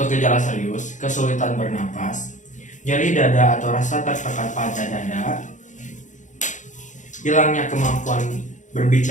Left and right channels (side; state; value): right; late; 0.36 ms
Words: gejala serius, kesulitan bernapas, nyeri dada atau rasa tertekan pada dada, hilangnya kemampuan